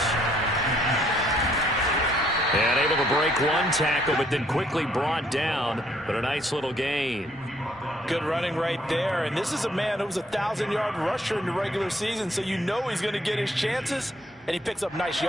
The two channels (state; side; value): normal; both; correlation 0.66